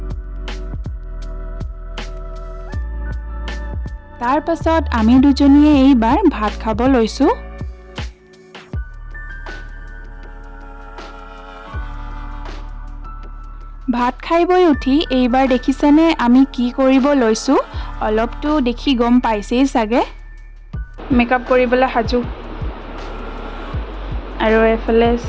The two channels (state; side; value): identical; both; correlation 1.00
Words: তাৰ পাছত আমি দুজনীয়ে এইবাৰ ভাত খাব লৈছো ভাত খাইবই উঠি এইবাৰ দেখিছেনে আমি কি কৰিব লৈছো অলপটো দেখি গম পাইছেই সাগে মেকআপ কৰিবলৈ হাজু আৰু এফালে